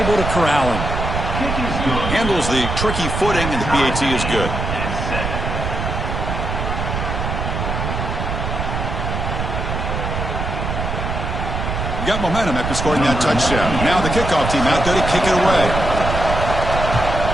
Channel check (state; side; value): noise; right; rumble, 3 dB below the sound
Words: to corral him. Handles the tricky footing, and the PAT is good. Got momentum after scoring that touchdown. Now the kickoff team out there to kick it away.